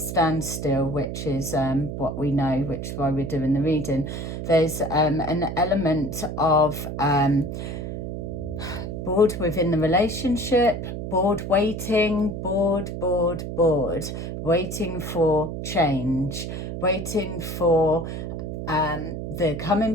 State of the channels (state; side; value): noise; right; hum, 6 dB below the sound